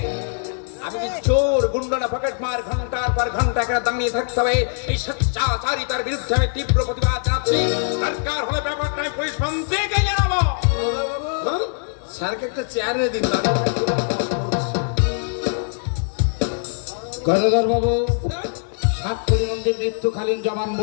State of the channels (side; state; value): right; silent; digital silence